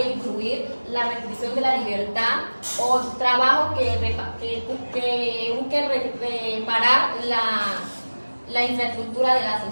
incluir la restricción de la libertad o trabajo que busque reparar la infraestructura de la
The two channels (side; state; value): both; inverted; correlation -1.00